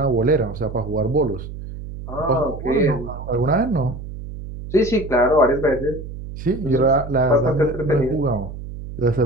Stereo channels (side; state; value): right; noise; hum, 10 dB below the sound